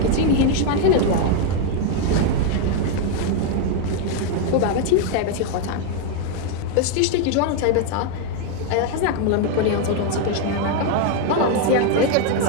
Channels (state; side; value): different; both; correlation 0.01